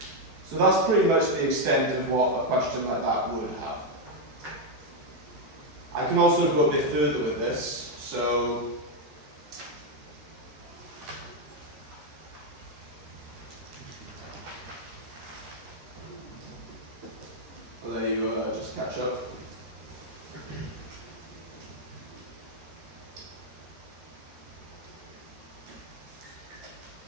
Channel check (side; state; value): left; late; 13 ms